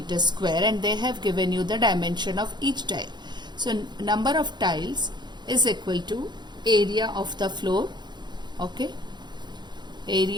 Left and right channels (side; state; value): left; late; 0.21 ms